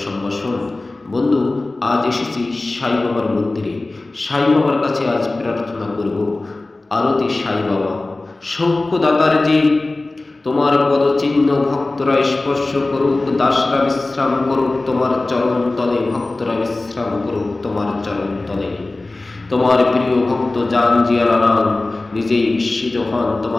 সম্ভাষণ। বন্ধু, আজ এসেছি সাই বাবার মন্দিরে। সাই বাবার কাছে আজ প্রার্থনা করব। আরতি সাই বাবা, সৌখ্যদাতার যে তোমার পদচিহ্ন ভক্তরা স্পর্শ করুক, দাসরা বিশ্রাম করুক তোমার চরণ তলে, ভক্তরা বিশ্রাম করুক তোমার চরণ তলে। তোমার প্রিয় ভক্ত জান জিয়ারাম নিজেই বিস্মিত হন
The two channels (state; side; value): quieter; right; 3.0 dB